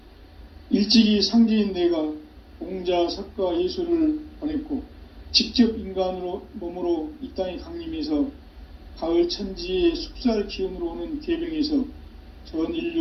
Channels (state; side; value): identical; both; correlation 1.00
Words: 일찍이 상제인 내가 공자, 석가, 예수를 보냈고 직접 인간으로 몸으로 이 땅에 강림해서 가을 천지의 숙살 기운으로 오는 계병에서 전